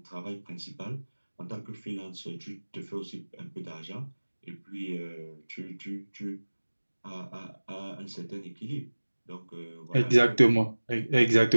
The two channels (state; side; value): inverted; both; correlation -1.00